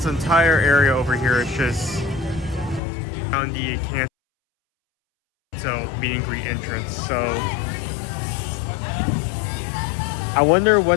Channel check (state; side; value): drops out; right; at 2.8 s